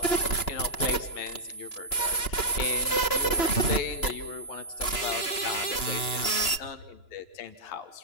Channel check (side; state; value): right; late; 2.9 ms